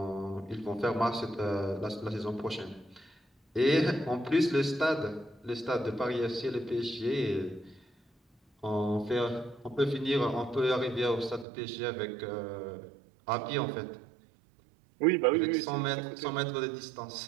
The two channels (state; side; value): drops out; left; at 11.5 s